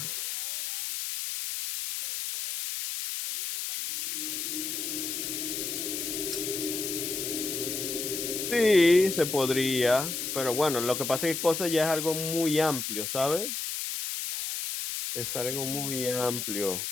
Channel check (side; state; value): left; noise; hiss, 3 dB below the sound